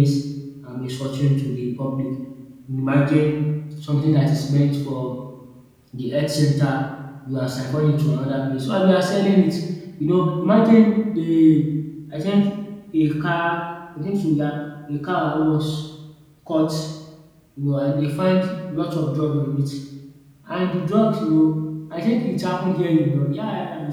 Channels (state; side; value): identical; both; correlation 1.00